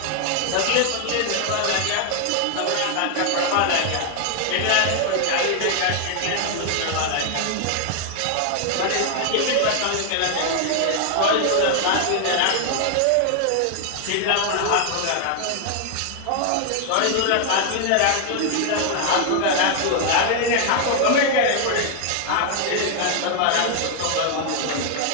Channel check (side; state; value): both; different; correlation 0.00